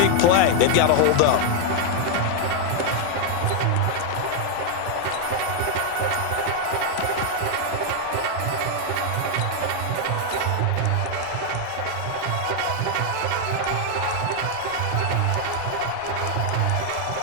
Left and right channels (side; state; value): both; different; correlation 0.00